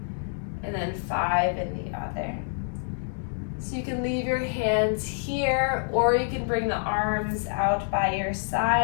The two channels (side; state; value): right; silent; digital silence